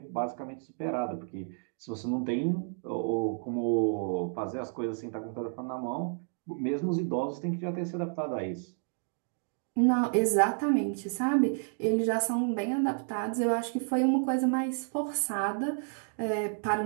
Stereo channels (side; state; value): left; silent; 57 dB below the other